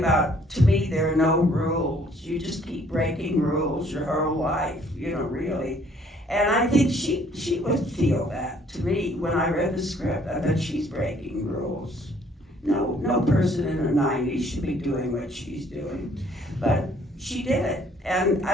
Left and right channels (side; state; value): both; normal; correlation 0.61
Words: to me, there are no rules. You just keep breaking rules your whole life, you know, really. And I think she would feel that to me when I read the script. I thought she's breaking rules. No person in her 90s should be doing what she's doing. But she did it. And